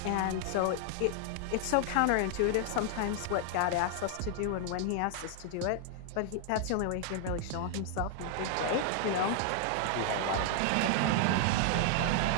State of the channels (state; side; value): different; both; correlation 0.00